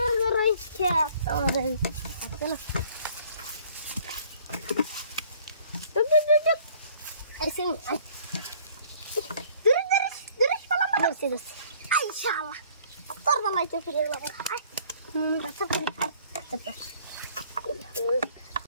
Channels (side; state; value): both; inverted; correlation -0.56